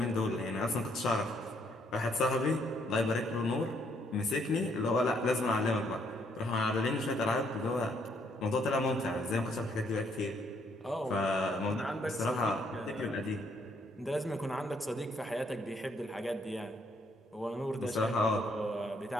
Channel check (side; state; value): both; normal; correlation 0.70